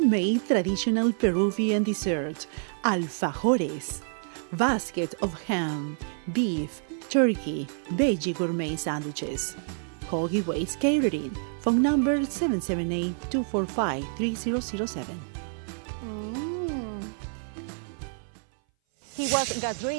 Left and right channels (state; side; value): silent; left; 57 dB below the other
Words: traditional Peruvian dessert, alfajores, basket of ham, beef, turkey, veggie gourmet sandwiches. Call Giveaways Catering, phone number 778-245-3007. He was